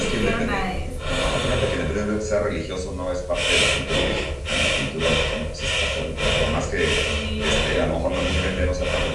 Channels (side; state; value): both; identical; correlation 1.00